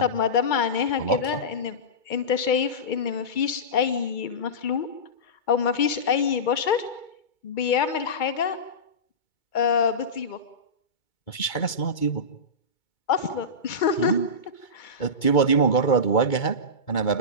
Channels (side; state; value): right; late; 2.2 ms